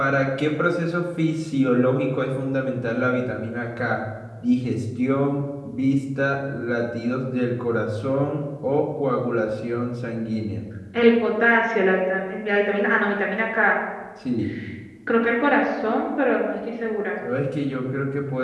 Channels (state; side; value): identical; both; correlation 1.00